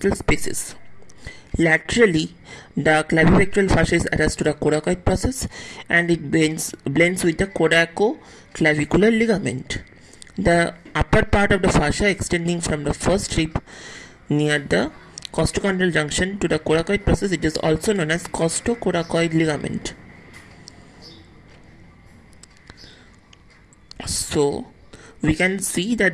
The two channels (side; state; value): both; identical; correlation 1.00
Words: spaces. Laterally, the clavipectoral fascia is attached to the coracoid process and it blends with the coracoclavicular ligament. The upper part of the fascia extending from the first rib near the costochondral junction to the coracoid process, it is also known as costocoracoid ligament. So, we can see